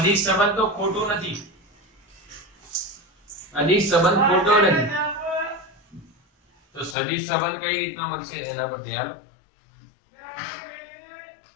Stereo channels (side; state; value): right; drops out; at 7.0 s